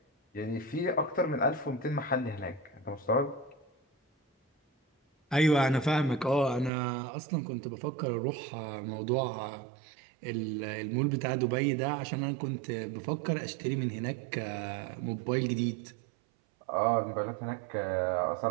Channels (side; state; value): left; drops out; at 6.7 s